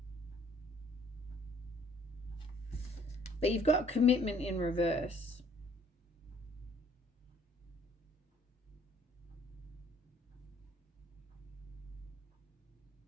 But you've got commitment in reverse.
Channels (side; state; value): both; normal; correlation 0.60